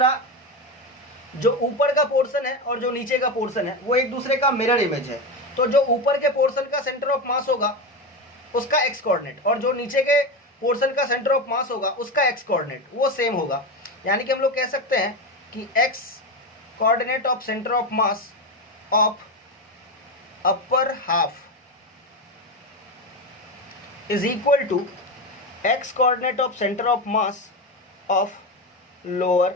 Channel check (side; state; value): both; normal; correlation 0.17